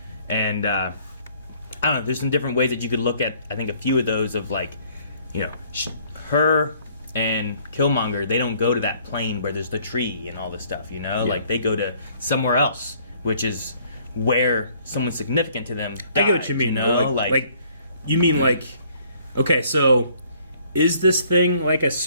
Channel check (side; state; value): both; inverted; correlation -0.61